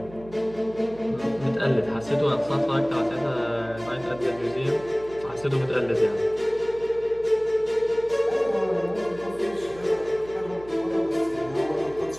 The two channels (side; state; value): right; noise; hum, 19 dB below the sound